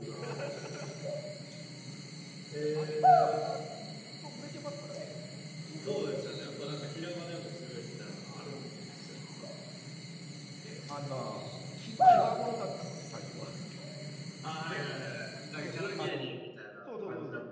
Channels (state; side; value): identical; both; correlation 1.00